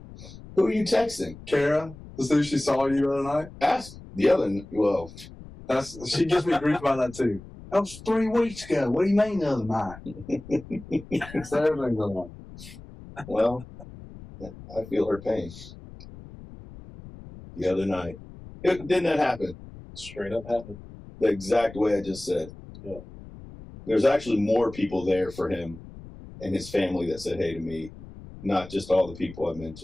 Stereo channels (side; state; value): left; noise; rumble, 17 dB below the sound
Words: Who are you texting? Kara, to see if she saw you the other night. Ask the other. Well, she gives me grief about that too. That was 3 weeks ago. What do you mean the other night? So everything's on. Well, I feel her pain. The other night, didn't that happen? Straight up happened. The exact way I just said. Yeah. There's actually more people there for him and his family that said hey to me, not just all the people I